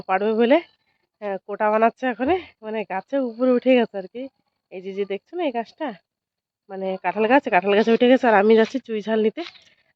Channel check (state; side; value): identical; both; correlation 1.00